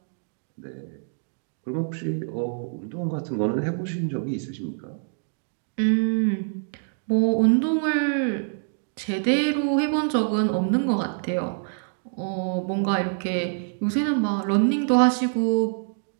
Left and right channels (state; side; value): silent; left; digital silence